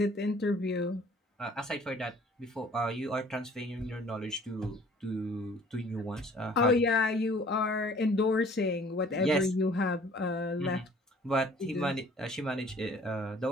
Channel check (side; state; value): both; normal; correlation 0.54